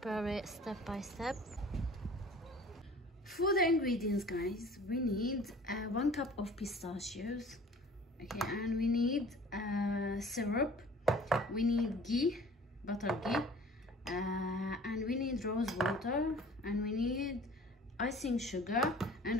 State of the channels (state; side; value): normal; both; correlation 0.48